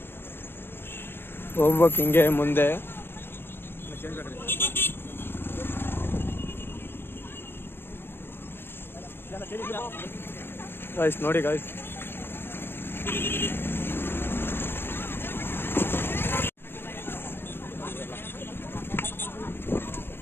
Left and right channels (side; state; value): right; late; 0.10 ms